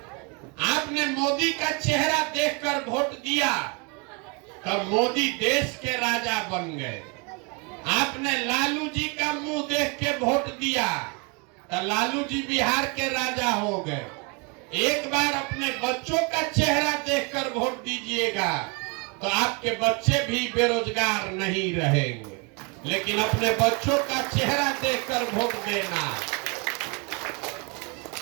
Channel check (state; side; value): quieter; left; 31.6 dB